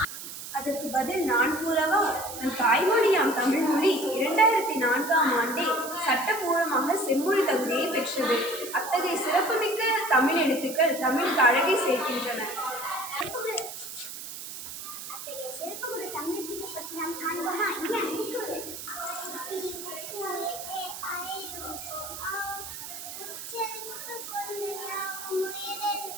அதற்கு பதில் நான் கூறவா? நம் தாய்மொழியாம் தமிழ்மொழி 2004ஆம் ஆண்டே சட்டபூர்வமாக செம்மொழி தகுதியை பெற்றது. அத்தகைய சிறப்புமிக்க தமிழ் எழுத்துக்கள் தமிழுக்கு அழகை சேர்க்கின்றன.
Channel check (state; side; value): noise; right; hiss, 10 dB below the sound